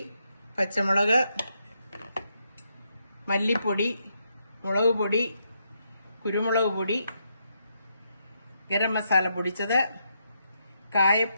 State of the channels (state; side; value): inverted; both; correlation -0.80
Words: പച്ചമുളക്, മല്ലിപ്പൊടി, മുളക് പൊടി, കുരുമുളക് പൊടി, ഗരം മസാല പൊടിച്ചത്,